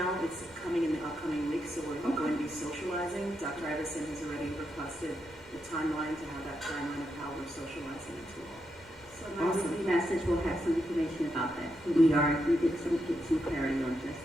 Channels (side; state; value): both; normal; correlation 0.83